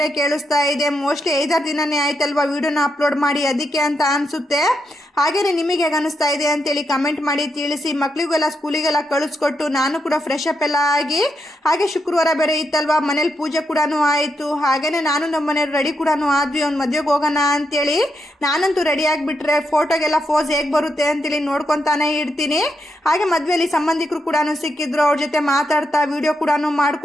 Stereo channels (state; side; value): normal; both; correlation 0.82